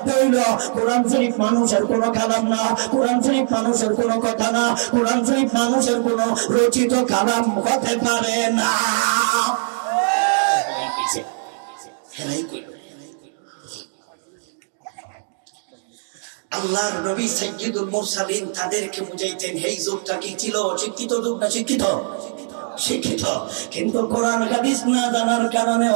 হইল কোরআন শরীফ মানুষের কোনো কালাম না, কোরআন শরীফ মানুষের কোনো কথা না, কোরআন শরীফ মানুষের কোনো রচিত কালাম হতে পারে না। হেরাই কইল আল্লাহর নবী সাইয়্যিদুল মুরসালিন তাদেরকে বুঝাইতেন এই যুগটা কি ছিল অশিক্ষিত যুগ না শিক্ষিত? শিক্ষিত। কিন্তু কোরআন হাদিস না জানার কারণে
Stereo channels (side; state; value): left; silent; digital silence